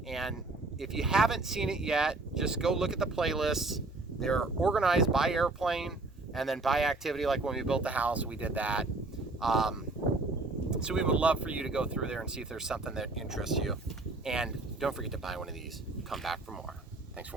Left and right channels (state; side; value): quieter; left; 3.2 dB